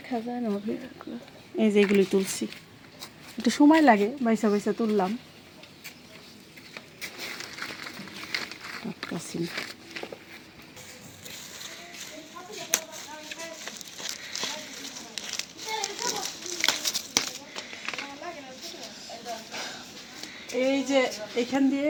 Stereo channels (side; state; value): both; identical; correlation 1.00